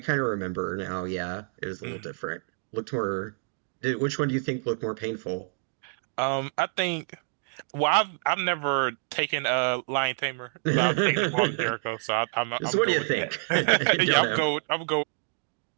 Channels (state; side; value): silent; left; digital silence